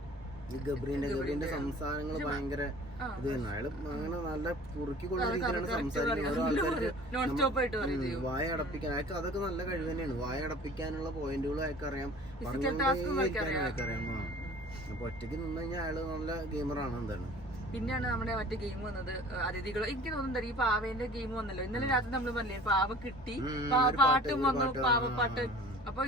ഈ ഗബ്രീന്റെ സംസാരങ്ങൾ ഭയങ്കര ഇത് തന്നെ. അയാള് അങ്ങനെ നല്ല കുറുക്കിക്കൊള്ള രീതിയിലാണ് സംസാരിക്കുന്നത്. ആൾക്കാർക്ക് വായ അടപ്പിക്കാൻ അയാൾക്ക് അതൊക്കെ നല്ല കഴിവ് തന്നെയാണ്. വായ അടപ്പിക്കാനുള്ള പോയിന്റുകളും അയാൾക്ക് അറിയാം, പറഞ്ഞുകൊണ്ടേയിരിക്കാനും അയാൾക്ക് അറിയാം. അപ്പൊ ഒറ്റയ്ക്ക് നിന്ന് കഴിഞ്ഞാൽ അയാള് നല്ല ഗെയിമറാണ്. എന്താണ് പിന്നെയാണ് നമ്മുടെ മറ്റേ ഗെയിം വന്നത്, അതിഥികൾ. എനിക്ക് തോന്നുന്നുണ്ട് ഈ പാവേന്റെ ഗെയിം വന്നല്ലോ ഇന്നലെ രാത്രി. നമ്മൾ പറഞ്ഞില്ലേ പാവ കിട്ടി, പാട്ടും വന്നു, പാവപ്പാട്ട്. അപ്പൊ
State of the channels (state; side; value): normal; both; correlation 0.46